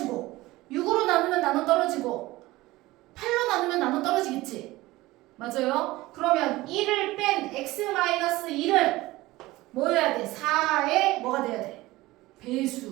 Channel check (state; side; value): quieter; left; 18.9 dB